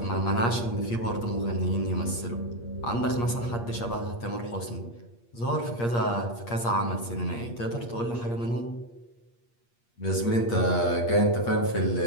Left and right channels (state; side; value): late; right; 8.5 ms